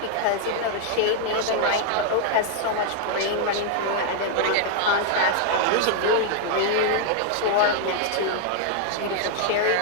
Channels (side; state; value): both; different; correlation -0.01